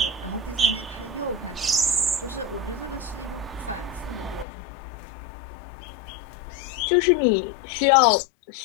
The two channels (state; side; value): drops out; right; at 4.5 s